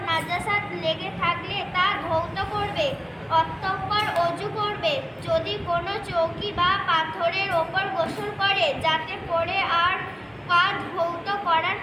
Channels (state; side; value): identical; both; correlation 1.00